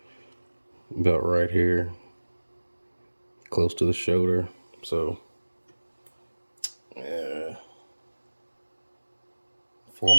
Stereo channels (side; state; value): both; inverted; correlation -1.00